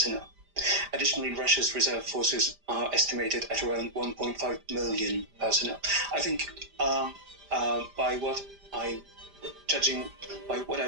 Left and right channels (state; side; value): late; left; 5.0 ms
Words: Additionally, Russia's reserve forces are estimated at around 1.5 million personnel. I think by what I